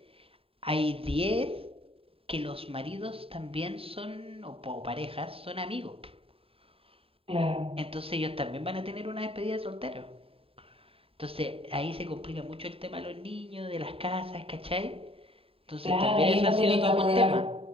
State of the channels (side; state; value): left; late; 0.27 ms